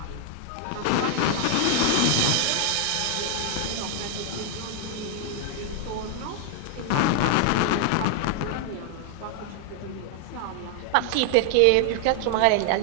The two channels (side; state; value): both; different; correlation 0.00